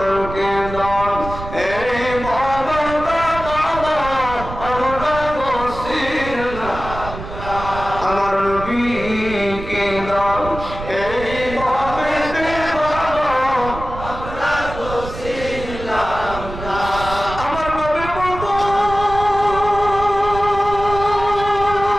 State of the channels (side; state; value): right; noise; rumble, 10 dB below the sound